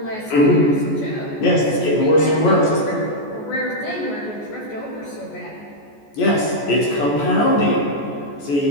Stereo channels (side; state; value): right; late; 14 ms